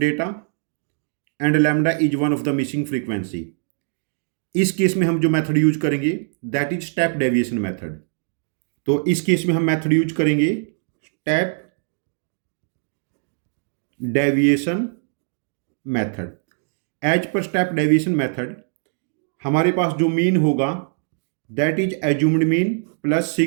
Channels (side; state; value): left; silent; digital silence